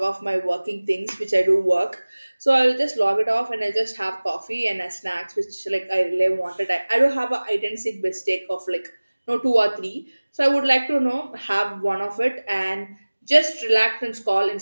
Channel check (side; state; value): both; inverted; correlation -1.00